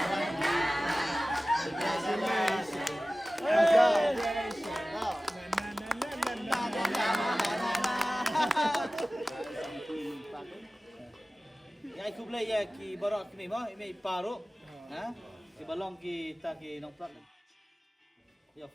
Ya aku play ya ki barak ni mah ini paru. Ha? Ki balong ki ta ki nong plak. Ya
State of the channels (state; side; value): normal; both; correlation 0.97